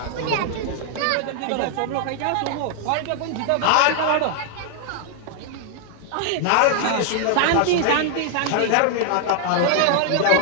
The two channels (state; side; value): different; both; correlation 0.00